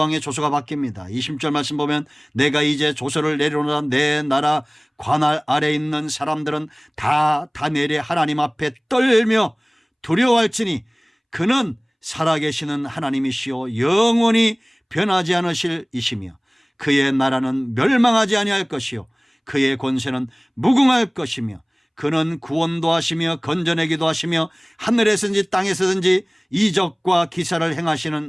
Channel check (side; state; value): both; identical; correlation 1.00